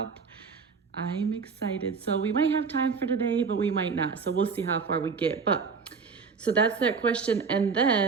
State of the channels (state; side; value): quieter; left; 5.2 dB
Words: I'm excited. So we might have time for today, but we might not. So we'll see how far we get. But so that's that question. And